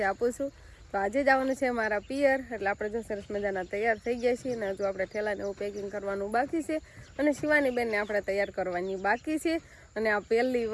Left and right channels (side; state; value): both; identical; correlation 1.00